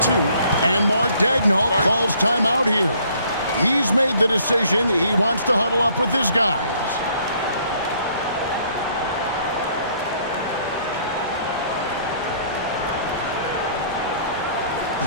And Mark Daigneault calls timeout here. He's made the decision. He wants to huddle up with his guys.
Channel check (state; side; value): inverted; both; correlation -0.62